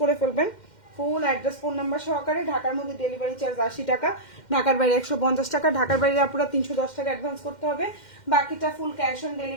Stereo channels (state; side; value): late; right; 2.1 ms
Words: করে ফেলবেন ফুল অ্যাড্রেস ফোন নাম্বার সহকারে। ঢাকার মধ্যে ডেলিভারি চার্জ 80 টাকা, ঢাকার বাইরে 150 টাকা, ঢাকার বাইরে আপনারা 310 টাকা অ্যাডভান্স করতে হবে, বাকিটা ফুল ক্যাশ অন